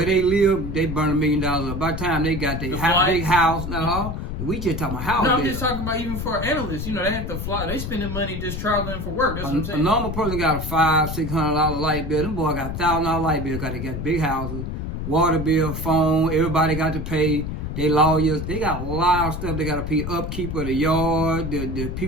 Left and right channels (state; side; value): noise; left; rumble, 5 dB below the sound